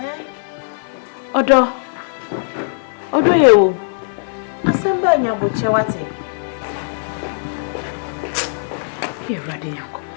Odo you. Asamba nya boche wate. You're ready, Yanko.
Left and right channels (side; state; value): right; silent; 59 dB below the other